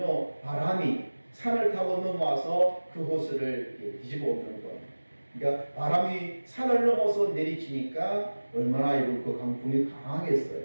바람이 산을 타고 넘어와서 그 호수를 뒤집어 엎는 거. 그러니까 바람이 산을 넘어서 내리치니까 얼마나 그 강풍이 강하겠어요.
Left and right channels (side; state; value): both; inverted; correlation -1.00